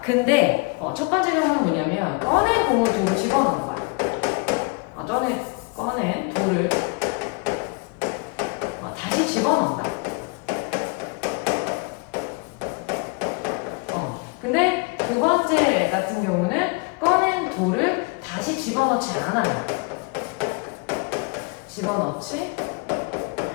근데 첫 번째 경우는 뭐냐면, 꺼낸 공을 돌을 집어넣는 거야. 꺼낸 돌을 다시 집어넣는다. 근데 두 번째 같은 경우는 꺼낸 돌을 다시 집어넣지 않아요. 집어넣지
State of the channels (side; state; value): right; quieter; 30.1 dB